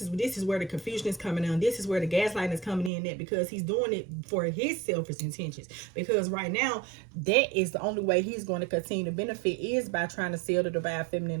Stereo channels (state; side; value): drops out; left; at 2.9 s